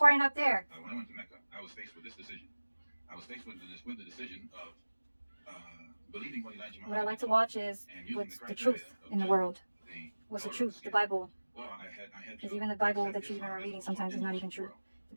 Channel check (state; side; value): inverted; both; correlation -1.00